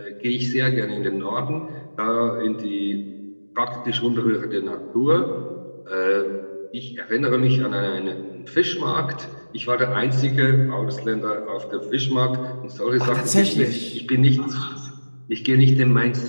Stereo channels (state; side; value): inverted; both; correlation -1.00